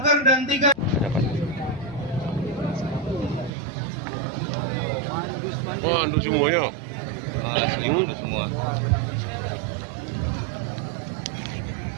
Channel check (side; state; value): left; drops out; at 3.5 s